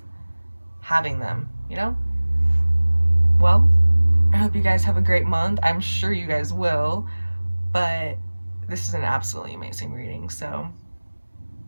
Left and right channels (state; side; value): inverted; both; correlation -1.00